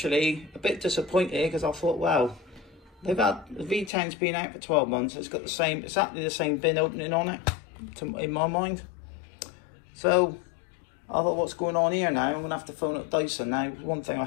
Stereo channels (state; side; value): drops out; right; at 3.9 s